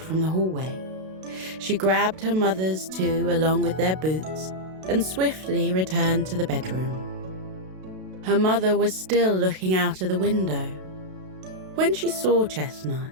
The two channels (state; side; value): late; left; 32 ms